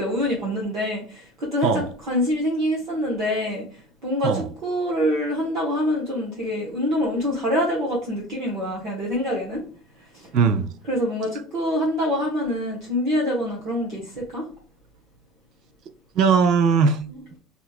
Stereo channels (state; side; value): normal; both; correlation 0.39